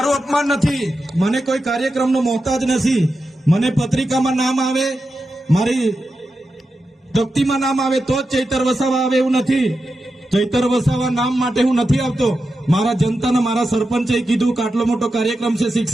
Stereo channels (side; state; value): both; normal; correlation 0.90